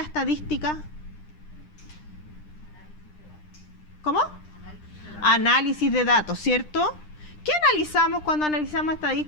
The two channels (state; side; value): late; right; 9.9 ms